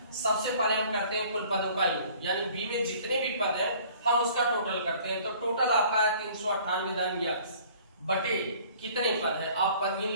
सबसे पहले हम करते हैं कुल पदों का योग, यानी बी में जितने भी पद हैं हम उसका टोटल करते हैं। तो टोटल आपका है 398 धन यक्स बटे कितने पद है, आप पद गिन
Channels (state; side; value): inverted; both; correlation -0.53